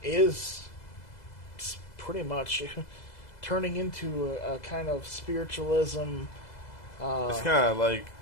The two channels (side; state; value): right; late; 2.0 ms